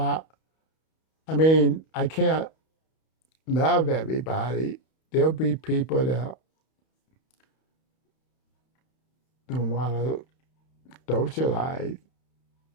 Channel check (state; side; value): late; right; 31 ms